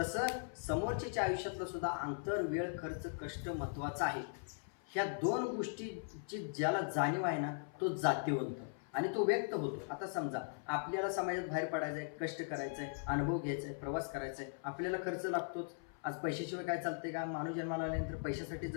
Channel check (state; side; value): silent; right; 52 dB below the other